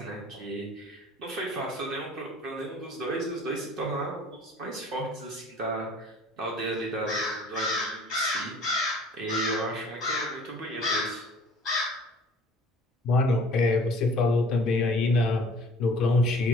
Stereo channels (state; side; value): normal; both; correlation 0.51